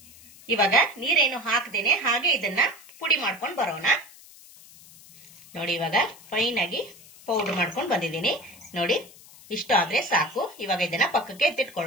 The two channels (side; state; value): left; noise; hiss, 22 dB below the sound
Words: ಇವಾಗ ನೀರೇನು ಹಾಕದೇನೆ ಹಾಗೆ ಇದನ್ನ ಪುಡಿ ಮಾಡ್ಕೊಂಡು ಬರೋಣ. ನೋಡಿ, ಇವಾಗ ಫೈನ್ ಆಗಿ ಪೌಡರ್ ಮಾಡ್ಕೊಂಡು ಬಂದಿದ್ದೀನಿ. ನೋಡಿ, ಇಷ್ಟು ಆದ್ರೆ ಸಾಕು. ಇವಾಗ ಇದನ್ನ ಪಕ್ಕಕ್ಕೆ